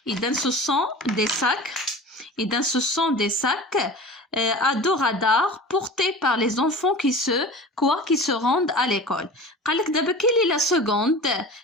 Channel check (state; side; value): normal; both; correlation 0.36